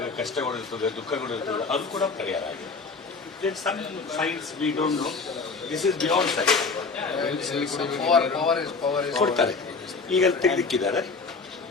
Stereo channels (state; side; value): quieter; right; 4.4 dB